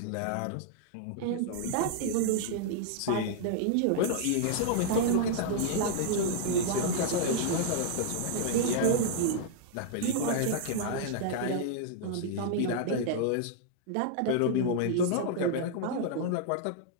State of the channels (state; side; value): different; both; correlation -0.01